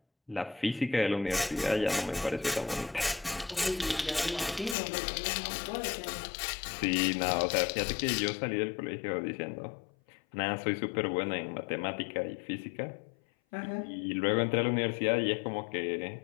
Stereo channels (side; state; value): right; drops out; at 4.8 s